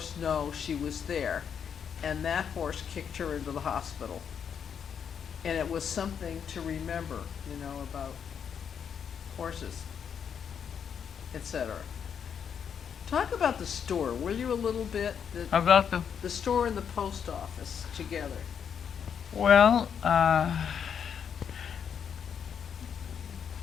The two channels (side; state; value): right; quieter; 7.6 dB